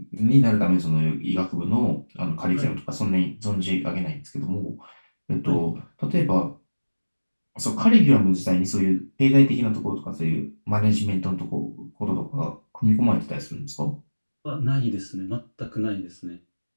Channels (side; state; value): both; inverted; correlation -1.00